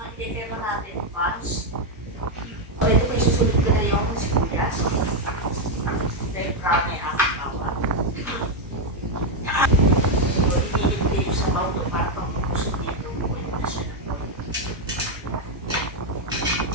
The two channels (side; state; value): both; normal; correlation 0.02